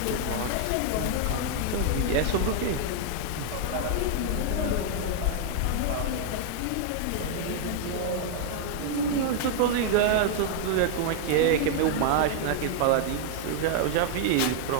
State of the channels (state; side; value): different; both; correlation 0.00